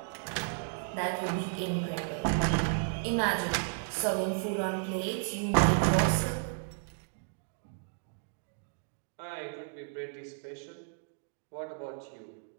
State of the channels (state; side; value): silent; left; digital silence